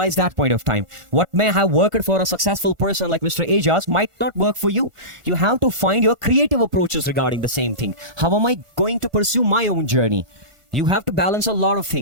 that point of time. What may have worked for a successful person like Mr. Ajaz might not work for you. You have to find your creative approaches regarding the same thing. How am I going to pursue my own journey? You have to balance a lot of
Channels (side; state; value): left; late; 1.4 ms